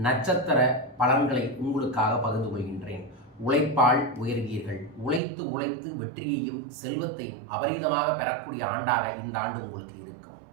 நட்சத்திர பலன்களை உங்களுக்காக பகிர்ந்து கொள்கின்றேன். உழைப்பால் உயர்வீர்கள். உழைத்து உழைத்து வெற்றியையும் செல்வத்தையும் அபரீதமாக பெறக்கூடிய ஆண்டாக இந்த ஆண்டு உங்களுக்கு இருக்கும்.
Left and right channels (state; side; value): drops out; left; at 5.2 s